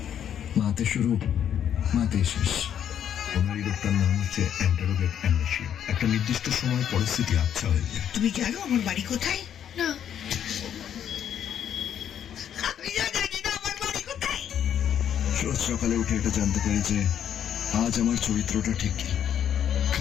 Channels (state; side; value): quieter; right; 9.4 dB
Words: মাতে শুরু, মাতে শেষ। ওনার এই রোগটার নাম হচ্ছে অ্যান্টারোগেট অ্যামনেশিয়া। একটা নির্দিষ্ট সময় পরিস্থিতি আচ্ছা হয়ে যায়। তুমি জানো আমার বাড়ি কোথায়? না। আমি জানি না আমার বাড়ি কোথায়। রোজ সকালে উঠে এটা জানতে পারি যে আজ আমার চরিত্রটা ঠিক কি।